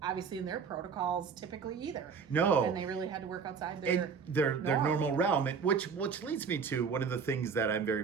obviously in their protocols typically either. No. And they really had to work outside their normal realm, which leads me to one of the things that I'm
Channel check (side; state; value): left; quieter; 5.9 dB